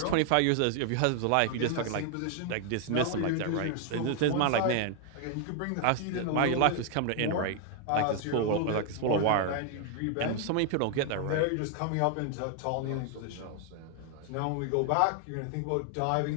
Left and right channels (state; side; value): different; both; correlation 0.00